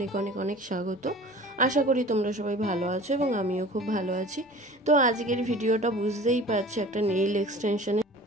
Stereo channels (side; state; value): both; normal; correlation 0.43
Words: অনেক অনেক স্বাগত। আশা করি তোমরা সবাই ভালো আছো এবং আমিও খুব ভালো আছি। তো আজকের ভিডিওটা বুঝতেই পারছি একটা নেইল এক্সটেনশনের।